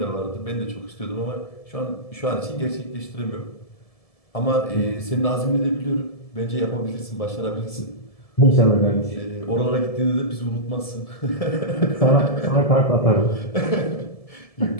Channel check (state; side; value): late; right; 1.7 ms